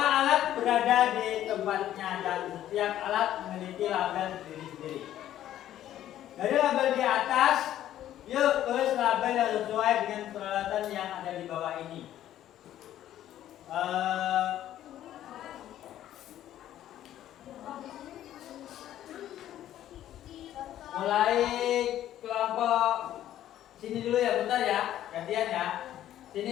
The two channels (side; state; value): right; quieter; 12.2 dB